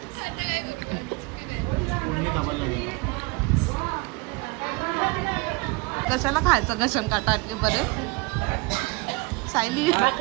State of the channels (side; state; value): left; quieter; 25.2 dB